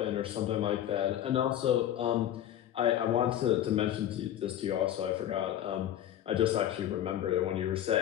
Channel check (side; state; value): right; quieter; 11.4 dB